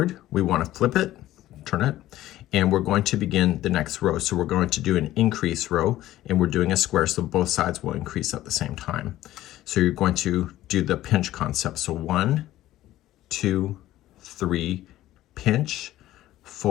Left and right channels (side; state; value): right; quieter; 14.7 dB